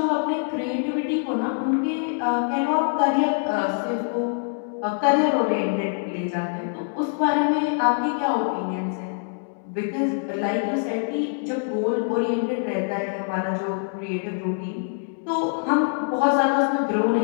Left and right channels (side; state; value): right; silent; digital silence